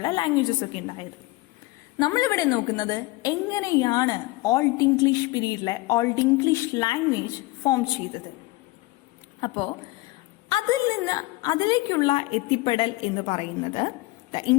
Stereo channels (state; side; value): quieter; right; 20.9 dB